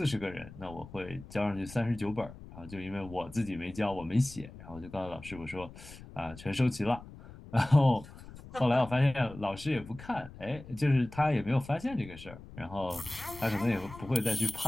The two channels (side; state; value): left; noise; rumble, 16 dB below the sound